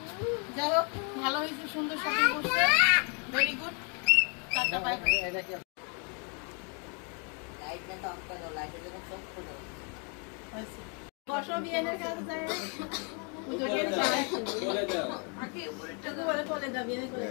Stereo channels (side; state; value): right; quieter; 37.3 dB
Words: যাই হোক, ভালো হয়েছে, সুন্দর শপিং করছে, very good. Tata, bye bye. বসো, বিয়েনের কাছে যায়।